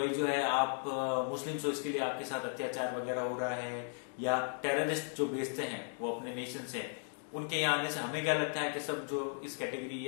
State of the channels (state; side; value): silent; right; 54 dB below the other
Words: जो है आप मुस्लिम्स हो, इसके लिए आपके साथ अत्याचार वगैरह हो रहा है, या टेररिस्ट जो भेजते हैं वो अपने नेशन से, उनके यहाँ आने से हमें क्या लगता है कि सब जो इस कैटेगरी